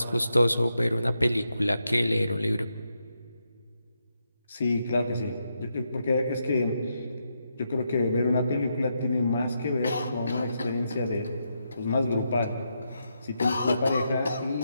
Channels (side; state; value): both; inverted; correlation -0.82